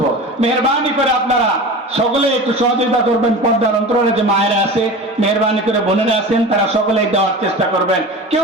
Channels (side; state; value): both; normal; correlation 0.33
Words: মেহেরবানি করে আপনারা সকলে একটু সহযোগিতা করবেন। পর্দার অন্তরালে যে মায়েরা আছে, মেহরবানি করে বোনেরা আছেন, তারা সকলে দেওয়ার চেষ্টা করবেন। কেউ